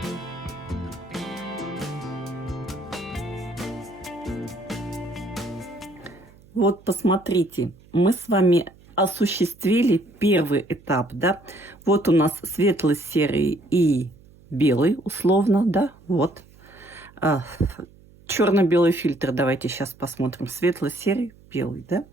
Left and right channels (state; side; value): noise; right; hum, 25 dB below the sound